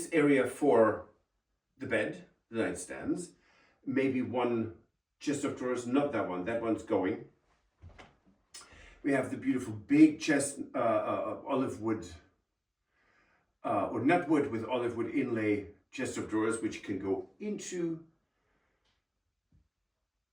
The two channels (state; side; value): identical; both; correlation 1.00